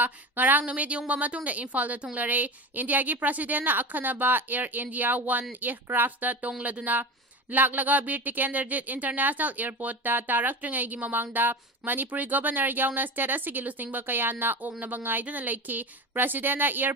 ngarang numit yungba matungda Imphal da thunglare India gi president na akhanaba Air India 1 aircraft da tongladuna laklaga Bir Tikenderjit International Airport ta taraktrngay gi mamangda Manipuri Governor yauna state asigi lusingba kayana oknaba ngaiduna leiki President na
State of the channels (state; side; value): normal; both; correlation 0.28